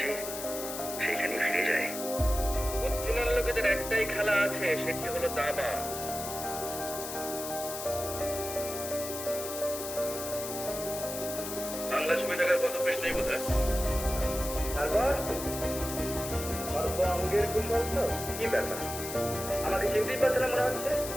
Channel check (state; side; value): noise; left; hiss, 7 dB below the sound